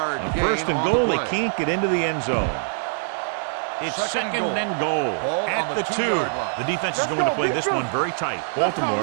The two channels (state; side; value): silent; left; 63 dB below the other